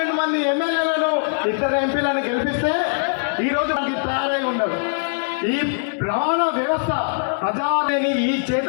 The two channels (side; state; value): right; silent; digital silence